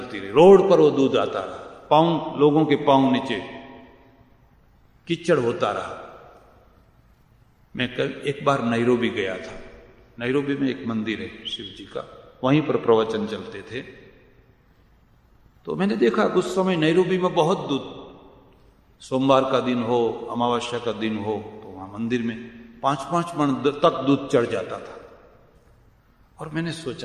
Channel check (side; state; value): both; identical; correlation 1.00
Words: रही, रोड पर वो दूध आता रहा, लोगों के पांव नीचे कीचड़ होता रहा। मैं एक बार नैरोबी गया था। नैरोबी में एक मंदिर है शिव जी का, वहीं पर प्रवचन चलते थे। तो मैंने देखा उस समय नैरोबी में बहुत दूध, सोमवार का दिन हो, अमावस्या का दिन हो, तो वहां मंदिर में 5-5 मन तक दूध चढ़ जाता था। और मैंने